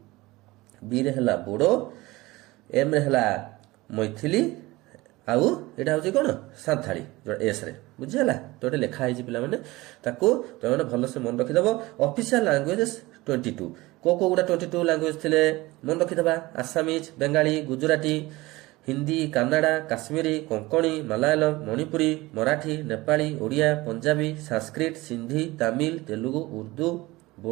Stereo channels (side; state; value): left; quieter; 20.4 dB